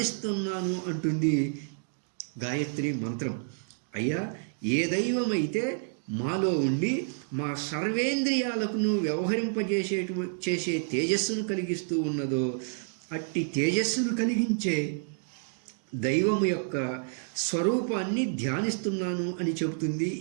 అంటుంది గాయత్రి మంత్రం. అయ్యా, ఏ దైవమైతే మాలో ఉండి మా సర్వేంద్రియాలకు చేసే తేజస్సును కలిగిస్తూ ఉన్నదో అట్టి తేజస్సును కలిగించే దైవము యొక్క స్వరూపాన్ని ధ్యానిస్తున్నాను అని చెబుతుంది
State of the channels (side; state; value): left; silent; digital silence